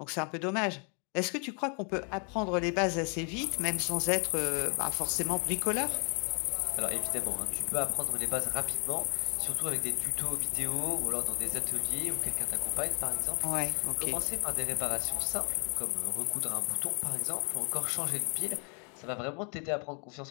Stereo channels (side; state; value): right; quieter; 38.2 dB